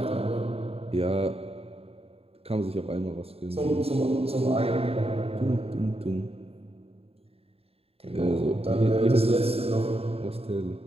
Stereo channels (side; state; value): left; late; 0.28 ms